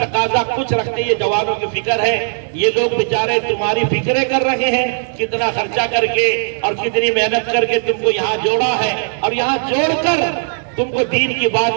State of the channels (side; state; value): left; silent; digital silence